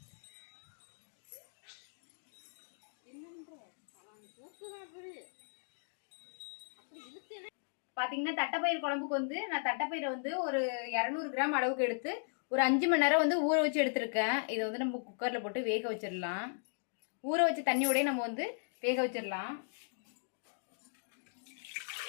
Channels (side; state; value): right; silent; digital silence